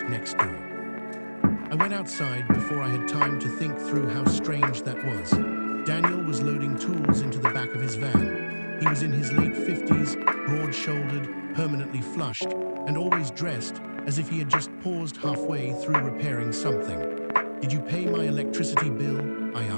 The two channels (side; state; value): both; inverted; correlation -1.00